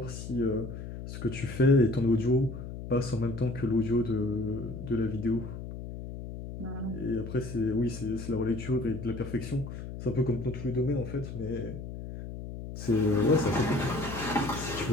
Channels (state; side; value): noise; left; hum, 9 dB below the sound